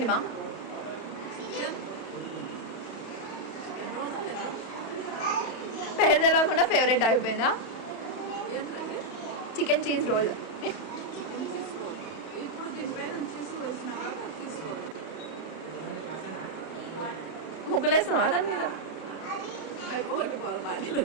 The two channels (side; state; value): right; late; 31 ms